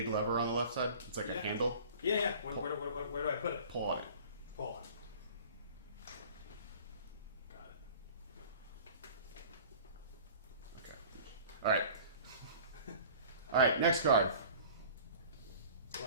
lever on the left side? It's like a handle. Yeah. Where do I put it? Pull on it. Pull on. Got it. Okay. All right. Next card.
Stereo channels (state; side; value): inverted; both; correlation -0.45